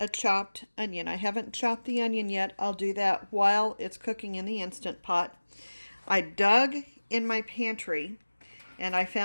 a chopped onion. I haven't chopped the onion yet. I'll do that while it's cooking in the Instant Pot. I dug in my pantry and I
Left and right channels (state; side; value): inverted; both; correlation -1.00